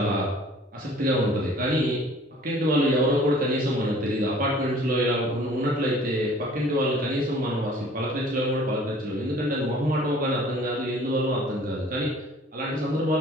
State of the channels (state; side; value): normal; both; correlation 0.51